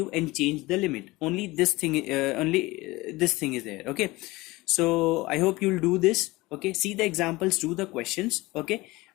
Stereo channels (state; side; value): quieter; right; 21.0 dB